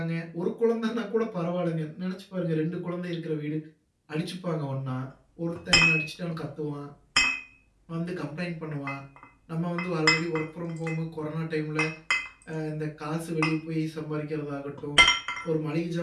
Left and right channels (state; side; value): identical; both; correlation 1.00